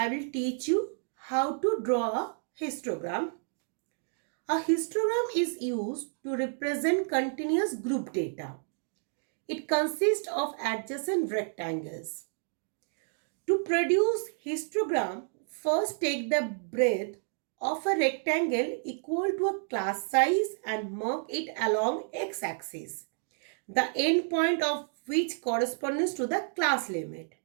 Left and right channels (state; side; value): silent; left; 57 dB below the other